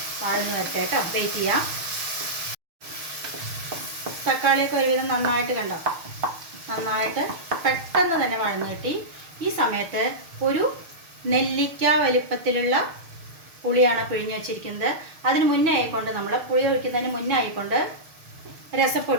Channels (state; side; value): late; left; 6.5 ms